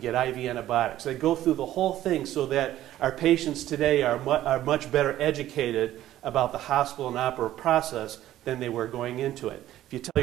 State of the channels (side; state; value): left; quieter; 13.5 dB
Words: IV antibiotics. They go through the whole thing so that our patients today are much better educated about the hospital and operative process than they were going into it. If you tell